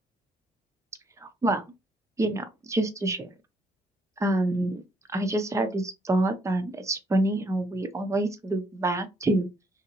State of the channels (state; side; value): normal; both; correlation 0.71